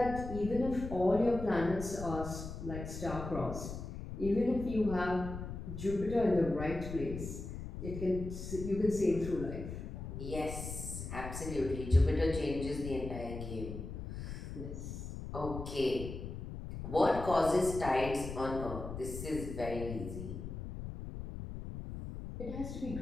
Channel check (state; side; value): noise; left; rumble, 8 dB below the sound